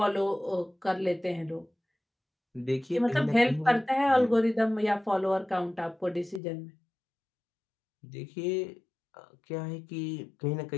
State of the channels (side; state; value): right; drops out; at 6.4 s